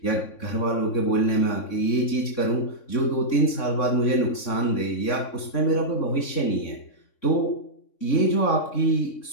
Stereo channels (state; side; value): late; right; 3.6 ms